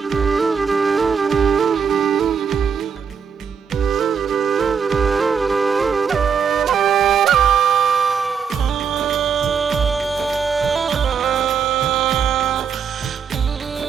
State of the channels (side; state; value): left; quieter; 6.6 dB